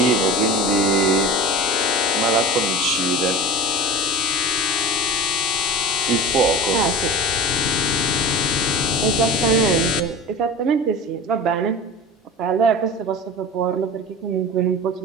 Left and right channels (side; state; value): both; normal; correlation 0.31